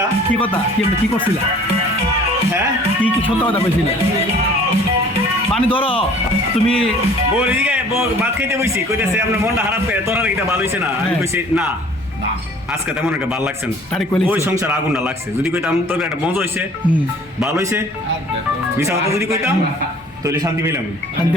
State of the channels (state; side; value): normal; both; correlation 0.51